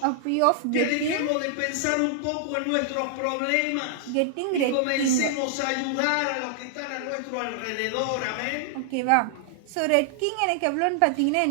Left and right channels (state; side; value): different; both; correlation -0.01